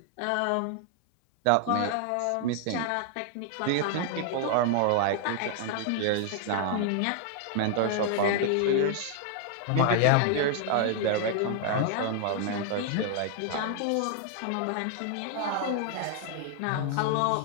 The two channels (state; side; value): different; both; correlation 0.00